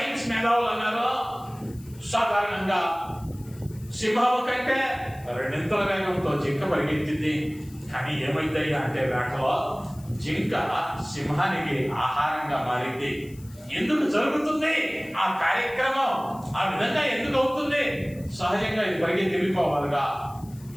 మేధావులు అన్నారు సాధారణంగా సింహము కంటే రెండింతల వేగంతో జింక పరిగెత్తింది. కానీ ఏమైందయ్యా అంటే వేటలో జింక సింహానికి ఆహారంగా మారింది. ఎందుకు జరుగుతుంది ఆ కార్యక్రమం? ఆ విధంగా ఎందుకు అవుతుంది? సహజంగా ఇది పరిగెత్తి వెళ్ళిపోవాలిగా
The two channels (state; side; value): noise; left; hiss, 24 dB below the sound